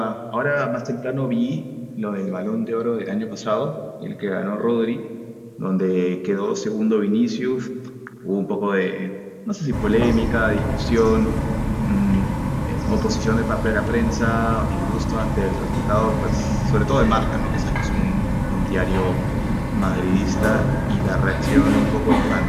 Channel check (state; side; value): identical; both; correlation 1.00